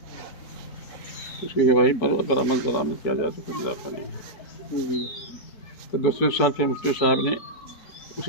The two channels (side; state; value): right; late; 4.6 ms